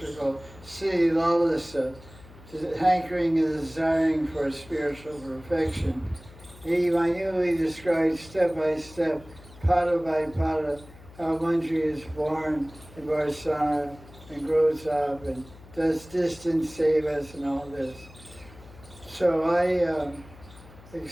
call Sri Lalasa, hankering and desiring for spiritual perfection. He minutely describes step by step, pada by pada, how manjari is born in Varsana and grows up and does distant sevas and all this. So I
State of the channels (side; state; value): left; noise; hum, 21 dB below the sound